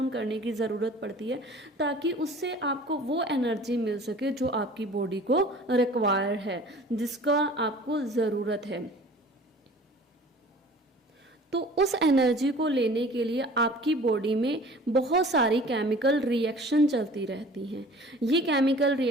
करने की ज़रूरत पड़ती है, ताकि उससे आपको वो एनर्जी मिल सके जो आपकी बॉडी को रिक्वायर है, जिसका आपको ज़रूरत है। तो उस एनर्जी को लेने के लिए आपकी बॉडी में बहुत सारी केमिकल रिएक्शन चलती रहती हैं। ये केमिकल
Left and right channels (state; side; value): normal; both; correlation 0.46